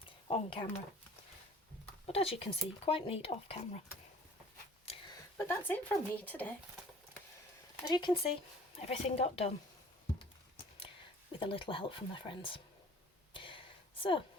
on camera, but as you can see, quite neat off camera. But that's it from me today. As you can see, everything got done with a little help from my friends. So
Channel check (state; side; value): normal; both; correlation 0.49